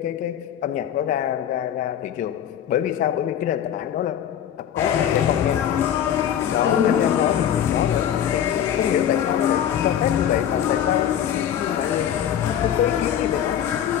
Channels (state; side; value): quieter; right; 9.9 dB